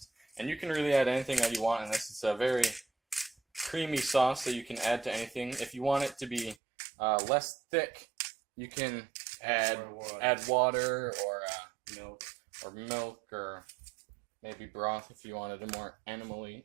And you can really add anything that you want in this. It's a very creamy sauce that you can add to anything. If you want it to be less thick, you can add water or milk or maybe broth if you wanted a more animal-y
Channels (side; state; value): left; drops out; at 6.6 s